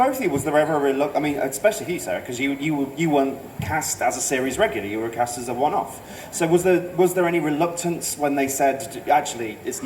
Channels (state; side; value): identical; both; correlation 1.00